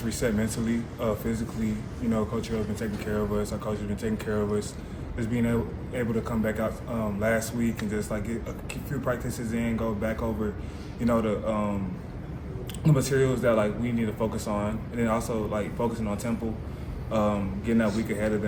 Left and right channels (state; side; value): identical; both; correlation 1.00